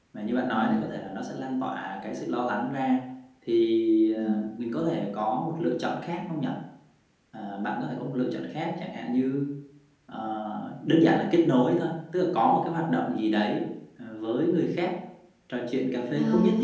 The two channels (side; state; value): both; identical; correlation 1.00